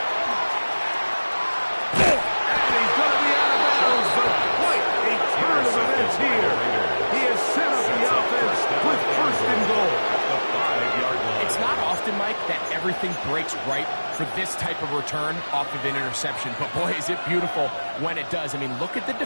And he's going to be out of bounds, but quite a turn of events here. He has set up the offense with first and goal. At the 5-yard line. It's not often, Mike, that everything breaks right for this type of return off of an interception. But, boy, is it beautiful when it does. I mean, look at the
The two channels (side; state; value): both; inverted; correlation -1.00